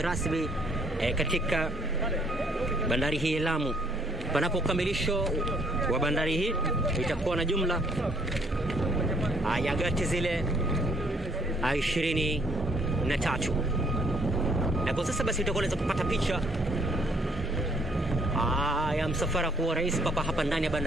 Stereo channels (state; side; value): normal; both; correlation 0.65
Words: rasmi katika bandari hii ya Lamu. Panapo ukamilisho wa bandari hii itakuwa na jumla ya gati zile 23. Na kwa sasa basi utakuwa unaweza kupata picha ya msafara wa rais papa hapa ndani ya